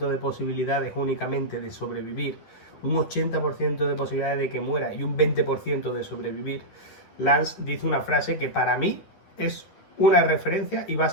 de posibilidades únicamente de sobrevivir, un 80% de posibilidades de que muera y un 20% de sobrevivir, Lance dice una frase que para mí es una referencia y va a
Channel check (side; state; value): right; late; 10 ms